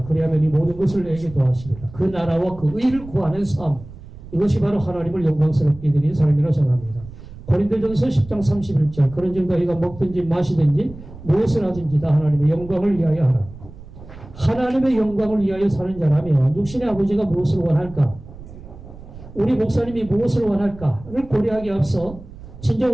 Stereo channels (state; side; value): noise; right; rumble, 16 dB below the sound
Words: 그리하면 이 모든 것을 내게 더하시리라. 그 나라와 그 의를 구하는 삶, 이것이 바로 하나님을 영광스럽게 드리는 삶이라고 생각합니다. 고린도전서 10장 31절 그런즉 너희가 먹든지 마시든지 무엇을 하든지 다 하나님의 영광을 위하여 하라. 하나님의 영광을 위하여 사는 자라면 육신의 아버지가 무엇을 원할까? 우리 목사님이 무엇을 원할까를 고려하기 앞서